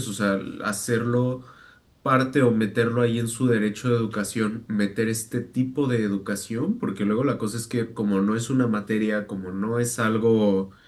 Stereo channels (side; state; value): both; identical; correlation 1.00